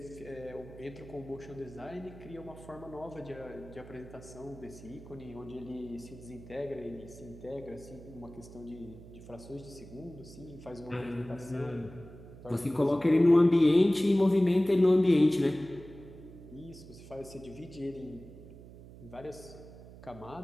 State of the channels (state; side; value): noise; right; hum, 17 dB below the sound